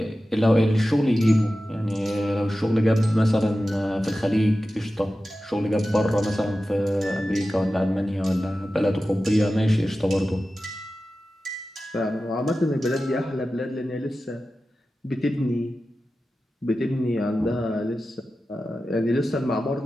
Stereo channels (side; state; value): both; normal; correlation 0.94